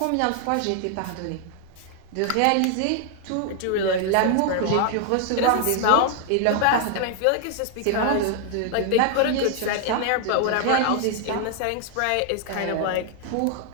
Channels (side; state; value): both; different; correlation 0.00